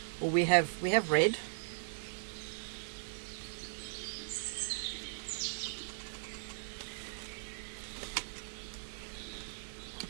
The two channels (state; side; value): silent; left; 52 dB below the other